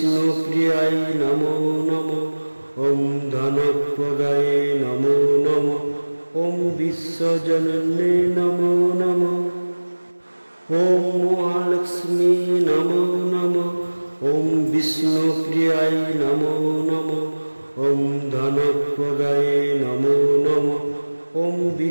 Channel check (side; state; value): both; inverted; correlation -1.00